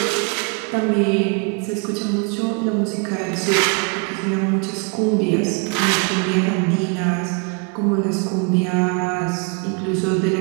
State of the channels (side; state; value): left; quieter; 34.9 dB